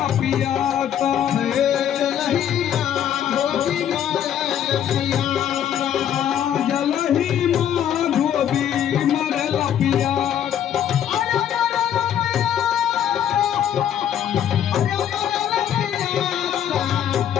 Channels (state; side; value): quieter; right; 9.9 dB